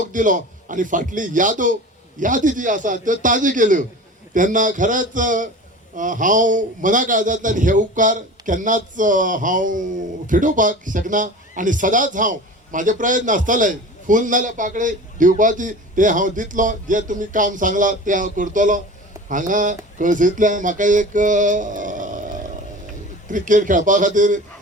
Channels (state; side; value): normal; both; correlation 0.36